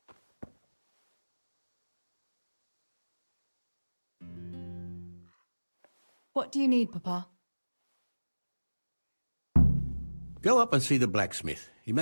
What do you need, Papa? Go up and see the blacksmith. He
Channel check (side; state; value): both; inverted; correlation -1.00